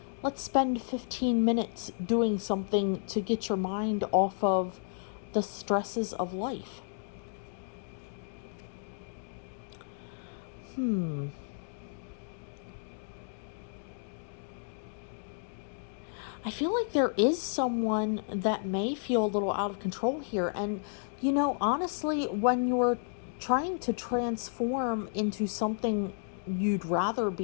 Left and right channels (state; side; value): silent; right; digital silence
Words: Let's spend 15 minutes doing something to get your mind off of the stresses of life. I feel like there is someone that may feel a little out of control here. And, honestly, when you're trying to transform into something you'd rather